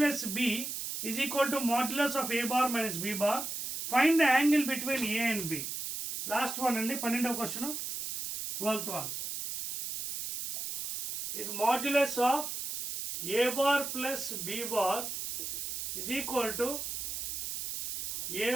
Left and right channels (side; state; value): right; noise; hiss, 4 dB below the sound